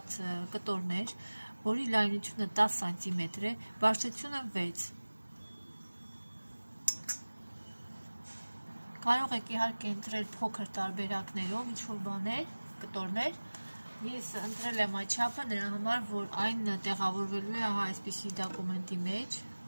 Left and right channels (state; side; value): inverted; both; correlation -1.00